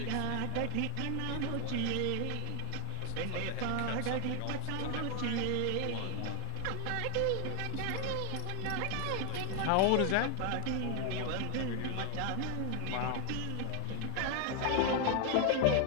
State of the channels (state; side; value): different; both; correlation 0.01